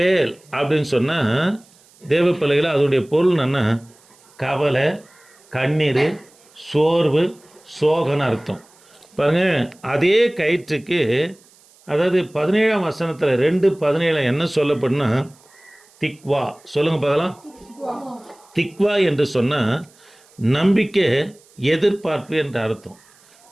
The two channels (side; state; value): right; noise; hiss, 29 dB below the sound